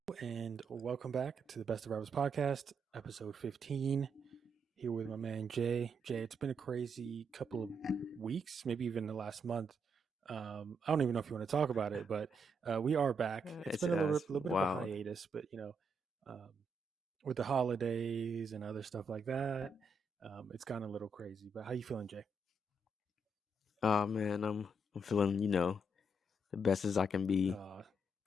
and welcome back to the Best of Rappers podcast, episode 15. Here with my man Jay. Jay, it's been a crazy couple of weeks, maybe even the last month. I don't even know if you want to talk about it, but we are back. It's It's been a it's little bit of a wild. hiatus, but um, with the holidays and other stuff like that, it's gone a little crazy. But how you feeling, Jay? Oh man, I'm feeling the best as I can be, Uh,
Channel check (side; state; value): both; normal; correlation 0.78